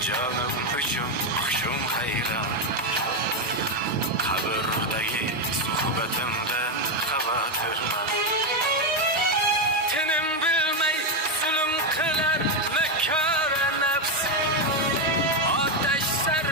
canım uchun hushim hayron.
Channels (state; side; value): normal; both; correlation 0.06